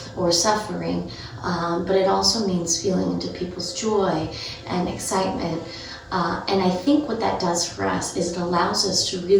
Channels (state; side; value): identical; both; correlation 1.00